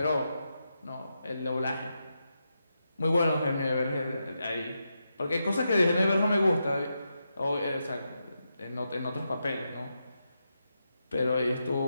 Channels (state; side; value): inverted; both; correlation -0.86